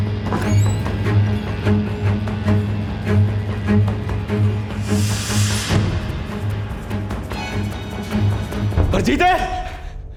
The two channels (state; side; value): identical; both; correlation 1.00